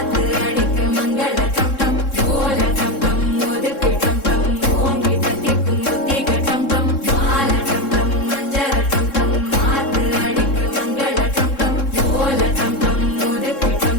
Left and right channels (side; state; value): right; late; 3.7 ms